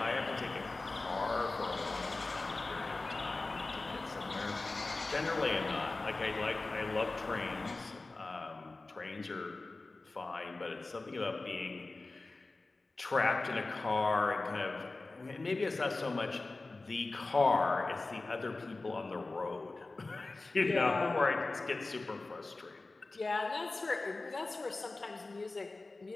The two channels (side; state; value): right; quieter; 3.3 dB